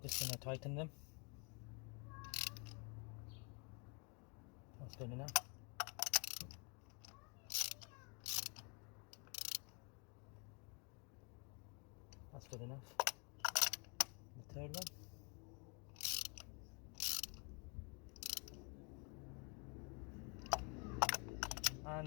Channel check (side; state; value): right; quieter; 34.9 dB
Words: Just gonna tighten them. That's good enough. That's good enough. The third one.